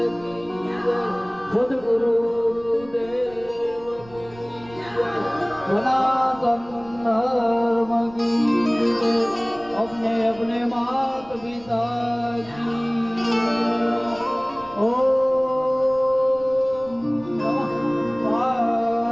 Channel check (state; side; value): noise; right; rumble, 22 dB below the sound